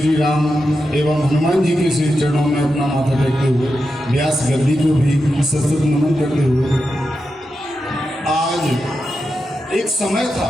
राम एवं हनुमान जी के श्री चरणों में अपना माथा टेकते हुए, व्यास गद्दी को भी सतत नमन करते हुए, आज एक समय था,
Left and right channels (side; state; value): both; normal; correlation 0.89